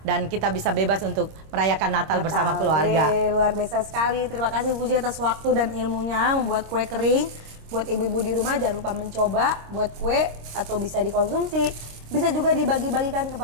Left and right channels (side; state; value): left; late; 26 ms